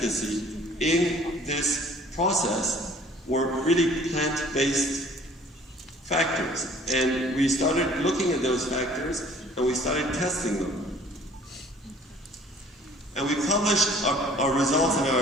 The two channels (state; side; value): normal; both; correlation 0.53